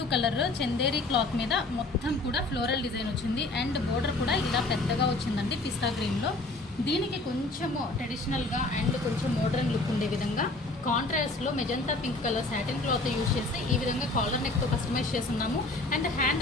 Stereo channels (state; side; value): quieter; right; 3.0 dB